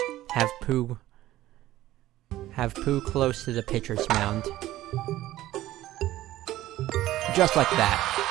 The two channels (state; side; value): quieter; left; 15.1 dB